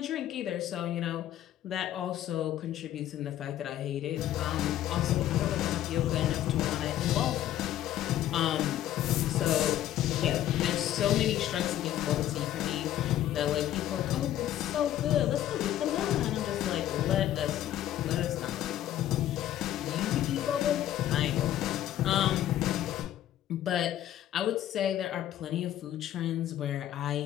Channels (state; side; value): quieter; right; 12.3 dB